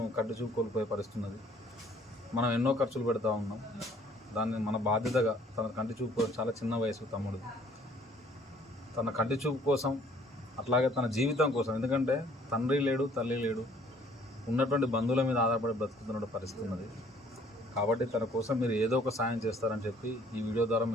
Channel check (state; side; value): normal; both; correlation 0.58